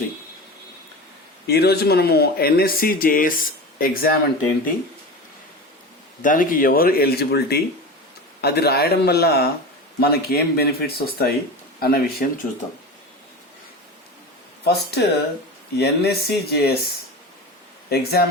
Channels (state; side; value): normal; both; correlation 0.28